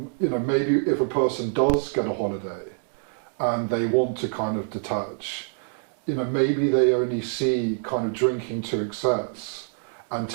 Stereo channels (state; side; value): silent; left; digital silence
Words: if a person does get a holiday and they want to kind of detach, maybe they only see kind of drinking to excess and